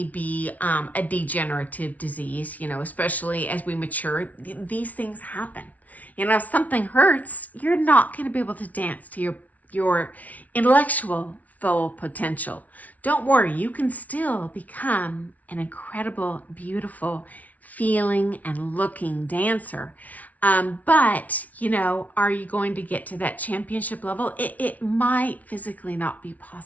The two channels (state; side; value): late; right; 0.072 ms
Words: be a degenerative disease, especially as we mature. These things happen. If something hurts, you're not going to be able to dance to your intellectual full potential. Don't worry, you can still become an incredible, beautiful, feeling and looking dancer. But, are you going to get to that championship level? It might physically not be